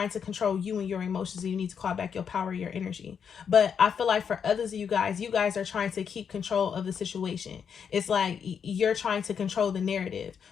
to control you and your emotions, and you need to call back your power, your energy. But I feel like for others of you guys are trying to keep control of the situation. It's like you're trying to control the narrative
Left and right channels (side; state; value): right; quieter; 7.1 dB